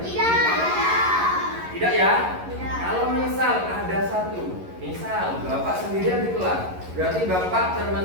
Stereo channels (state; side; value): late; left; 11 ms